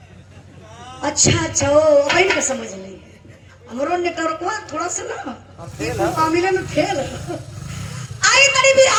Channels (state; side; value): identical; both; correlation 1.00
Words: अच्छा अच्छा ओ अभी का समझ नहीं हमरो नेटवर्क थोड़ा सा ना मामले में फेल आई गरीबी